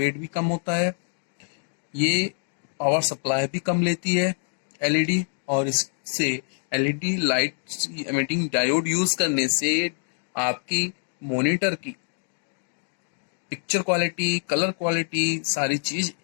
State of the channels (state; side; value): silent; right; 61 dB below the other